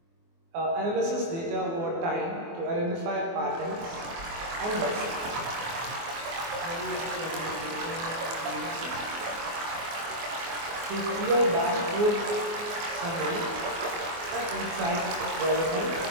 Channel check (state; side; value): late; left; 24 ms